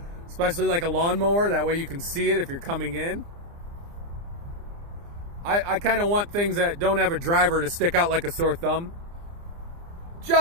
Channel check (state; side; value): late; left; 29 ms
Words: especially like a lawnmower, that way you can see it if you're coming in. I kind of want things that don't have a driver to stick out like a sore thumb,